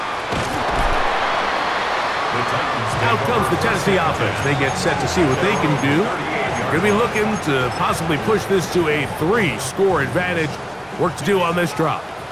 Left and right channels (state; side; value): identical; both; correlation 1.00